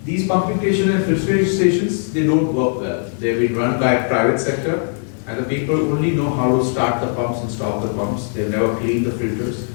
these pumping stations and filtration stations, they don't work well. They've been run by a private sector, and the people only know how to start the pumps and stop the pumps. They've never cleaned the filters.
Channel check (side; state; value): right; silent; 66 dB below the other